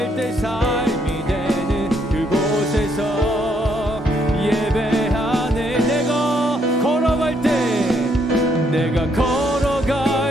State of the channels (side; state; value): both; normal; correlation 0.72